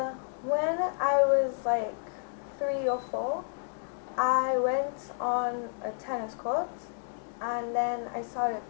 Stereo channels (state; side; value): silent; right; 57 dB below the other